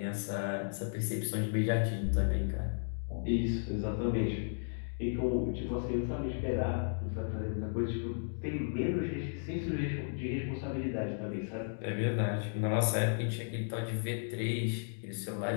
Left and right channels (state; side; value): silent; right; digital silence